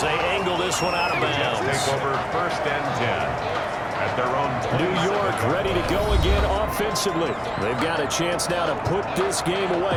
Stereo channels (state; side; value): identical; both; correlation 1.00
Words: they angle this one out of bounds. Take over first and 10. At their own New York ready to go again offensively. They've got a chance now to put this game